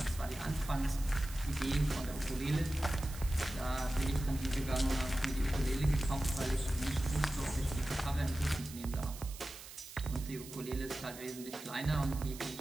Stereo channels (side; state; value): right; noise; hiss, 14 dB below the sound